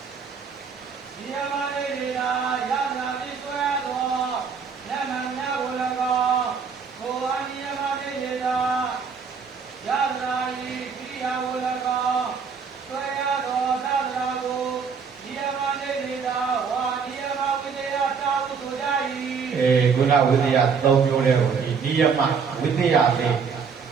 နိယမနေတေတယနာတိဆွဲသောနမညကို၎င်းကိုအာနိယမနေတေတယနာဤကိရိယာကို၎င်းဆွဲရသောတတနာကိုနိယမနေတေတဝါနိယမဝိသေယသာဟုဆိုကြ၏ခုနဝိသေယ၃မျိုးလဲကိုဒီနိယမဝိသေယလေး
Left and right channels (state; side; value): quieter; left; 5.9 dB